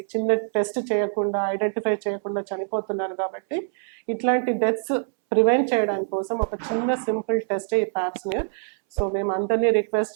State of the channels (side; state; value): left; silent; 62 dB below the other